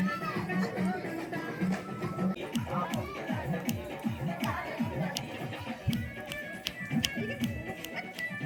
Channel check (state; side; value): identical; both; correlation 1.00